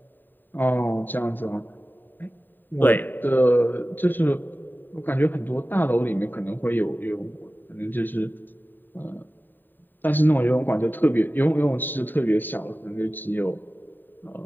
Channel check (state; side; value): late; right; 0.091 ms